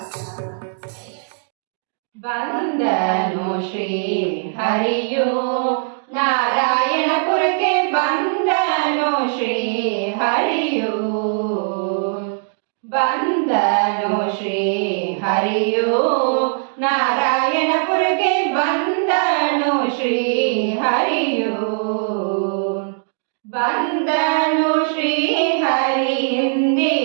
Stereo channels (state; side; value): silent; left; digital silence